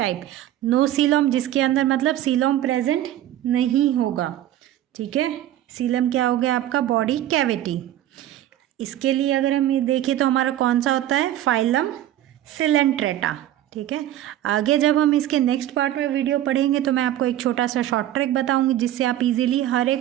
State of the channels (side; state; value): left; quieter; 12.8 dB